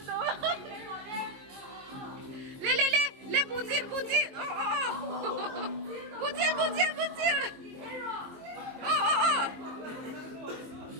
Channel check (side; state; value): left; late; 22 ms